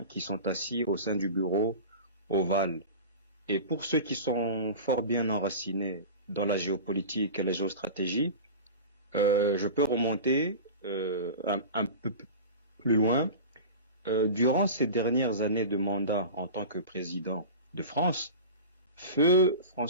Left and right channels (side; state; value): both; inverted; correlation -0.32